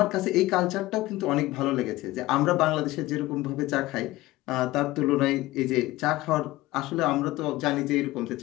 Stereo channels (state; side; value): quieter; right; 18.2 dB